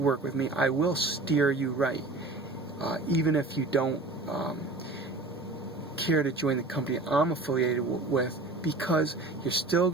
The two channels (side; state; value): left; quieter; 3.1 dB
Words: with me, I will steer you right. Even if you don't care to join the company I'm affiliated with, because you're still